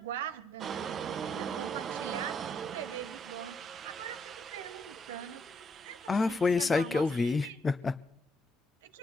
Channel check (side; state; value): both; normal; correlation 0.75